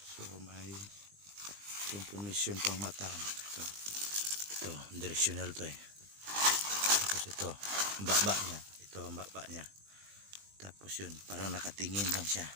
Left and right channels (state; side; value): late; left; 20 ms